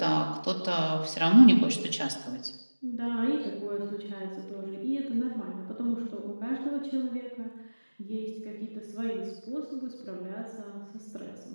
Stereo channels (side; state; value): both; inverted; correlation -1.00